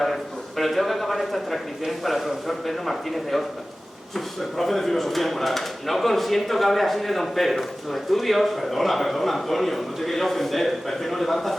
pero tengo que acabar estas transcripciones para el profesor Pedro Martínez de Oscar. El profe de filosofía moral. No consiento que hable así de don Pedro. Sus estudios... Perdona, Antonio, no te quería ofender, pero es que no levantas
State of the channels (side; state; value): both; normal; correlation 0.97